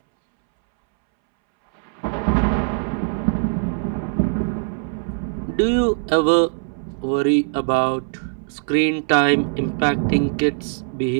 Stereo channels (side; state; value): left; silent; 65 dB below the other